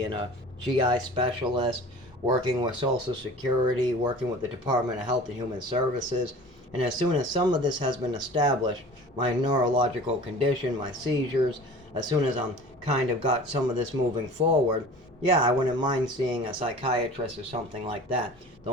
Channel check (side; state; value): both; normal; correlation 0.41